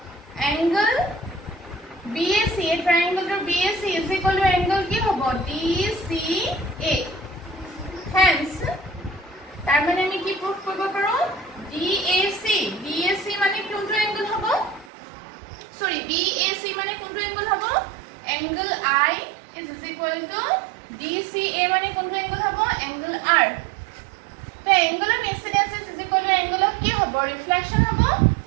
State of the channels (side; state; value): left; drops out; at 14.9 s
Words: angle BAC triangle BAC is equal to angle কি হ'ব DCA hence তাৰ মানে আমি কি প্ৰুফ কৰিব পাৰো DAC মানে কোনটো angle হ'ব sorry BAC মানে কোনটো angle হ'ব angle I is equal to DCA মানে কোনটো angle হ'ব angle R তো angle of incidence is equal to angle of কি হ'ব reflection হ'ব